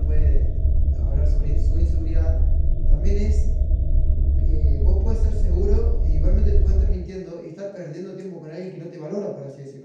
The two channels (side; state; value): both; identical; correlation 1.00